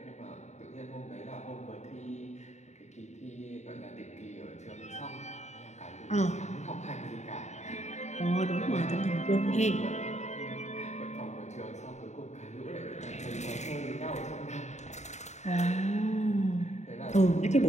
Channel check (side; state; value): right; late; 0.33 ms